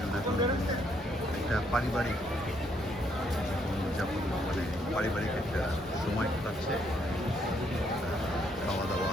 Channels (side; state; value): both; normal; correlation 0.71